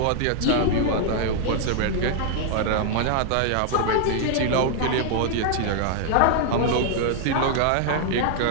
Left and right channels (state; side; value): different; both; correlation 0.00